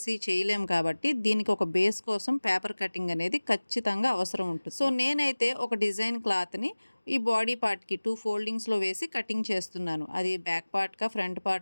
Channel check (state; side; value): inverted; both; correlation -1.00